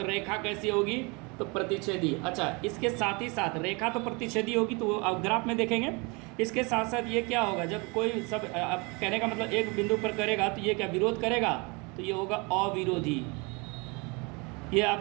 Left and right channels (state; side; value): quieter; left; 29.0 dB